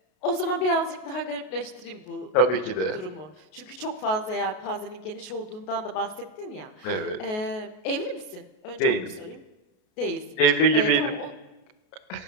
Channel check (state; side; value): late; right; 33 ms